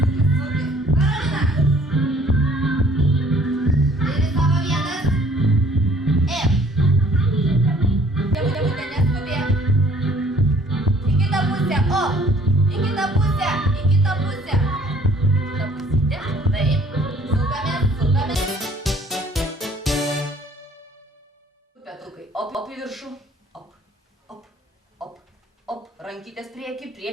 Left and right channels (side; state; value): both; normal; correlation 0.57